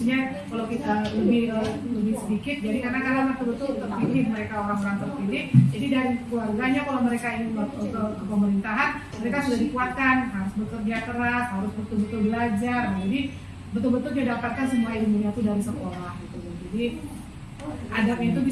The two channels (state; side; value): identical; both; correlation 1.00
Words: kalau kita lebih sedikit. Jadi karena betul-betul terpilih mereka, orang-orang terpilih. Jadi dari keluarganya kalau mereka ingin ke pemerintahan, mereka sudah dikuatkan, harus bekerja keras, harus betul-betul belajar. Nah, jadi betul-betul dia dapatkan semua ilmunya itu dari sekolah gitu. Jadi adabnya itu